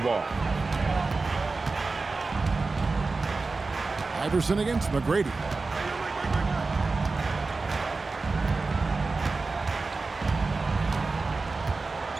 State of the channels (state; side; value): quieter; left; 3.8 dB